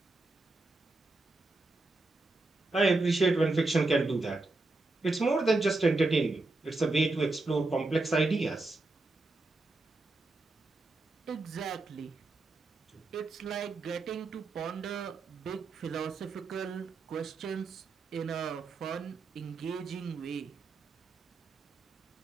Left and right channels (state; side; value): quieter; left; 3.2 dB